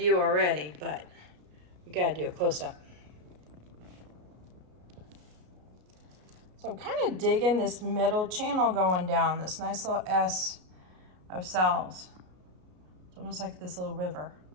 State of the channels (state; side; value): late; left; 33 ms